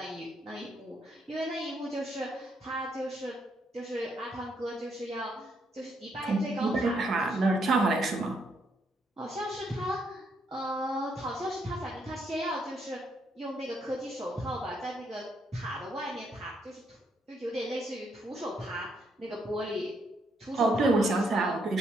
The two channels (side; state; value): both; normal; correlation 0.75